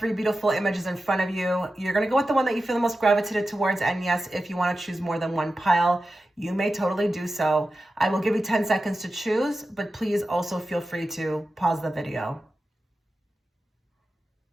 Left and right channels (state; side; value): normal; both; correlation 0.93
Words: beautiful images in front of you. You're going to go with the one that you feel the most gravitated towards, and yes, if you want to choose more than one pile, you may totally do so. I will give you 10 seconds to choose, but please also feel free to pause the video.